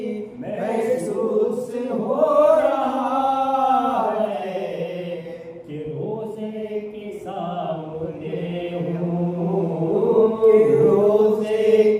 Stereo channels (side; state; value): both; identical; correlation 1.00